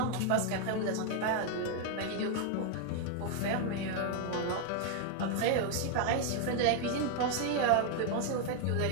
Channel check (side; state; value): both; different; correlation 0.00